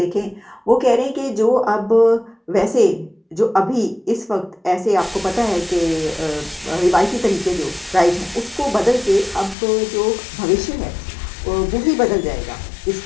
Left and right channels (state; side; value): drops out; right; at 9.6 s